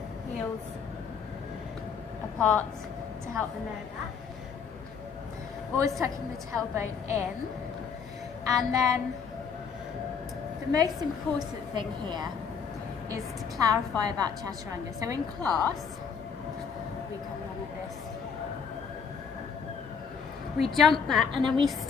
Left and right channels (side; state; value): right; quieter; 6.3 dB